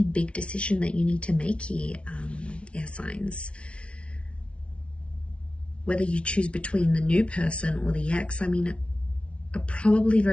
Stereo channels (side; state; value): right; late; 0.060 ms